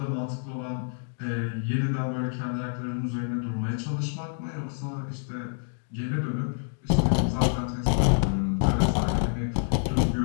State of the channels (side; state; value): right; silent; digital silence